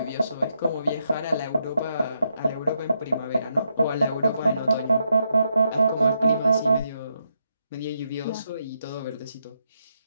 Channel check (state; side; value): inverted; both; correlation -0.80